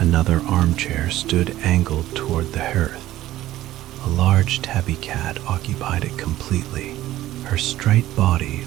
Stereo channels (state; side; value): quieter; left; 14.8 dB